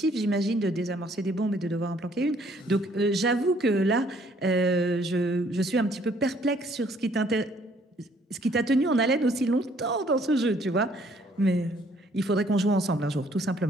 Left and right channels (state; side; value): normal; both; correlation 0.62